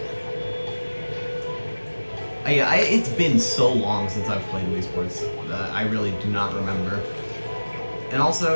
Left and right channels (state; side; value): inverted; both; correlation -1.00